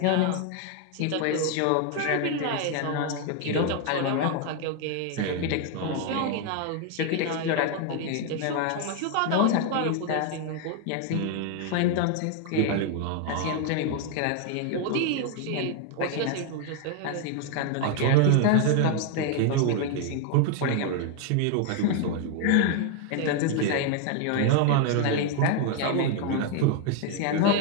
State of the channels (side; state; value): both; different; correlation 0.00